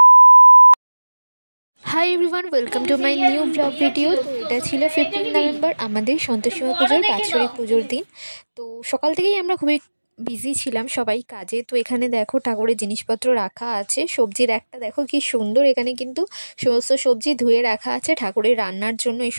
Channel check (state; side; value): inverted; both; correlation -1.00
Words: Hi everyone, welcome to my new blog video. তো এটা ছিল 15 নভেম্বর আমাদের সন্তোষী মা পুজোর বাৎসরিক পুজোর দিন। তো সকাল থেকেই আমরা খুবই বিজি ছিলাম সবাই কাজে। তো এখানে দেখো ঠাকুরের জিনিসপত্র রাখা আছে, সবজির একটা দেখো কি সুন্দর, এখানে কিন্তু সমস্ত সবজি ধুয়ে রাখা আছে ঠাকুরের রান্নার জন্য। এই